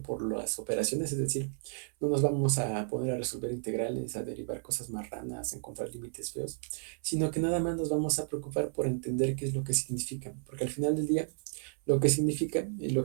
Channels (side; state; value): left; silent; 56 dB below the other